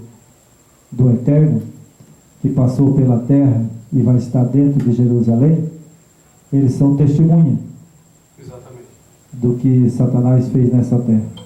do Eterno, que passou pela terra e vai estar dentro de Jerusalém, eles são testemunha. Exatamente. Do que Satanás fez nessa terra,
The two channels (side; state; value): both; identical; correlation 1.00